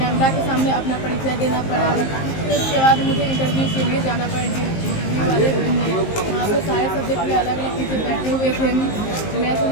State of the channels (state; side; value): late; right; 19 ms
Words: के सामने अपना परिचय देना पड़ा। फिर उसके बाद मुझे इंटरव्यू के लिए जाना पड़ा। इंटरव्यू वाले ने वहाँ पे सारे सब्जेक्ट के अलग अलग टीचर बैठे हुए थे। मैं तो